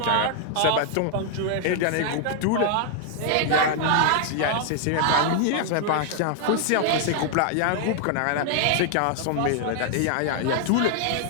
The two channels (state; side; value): different; both; correlation 0.00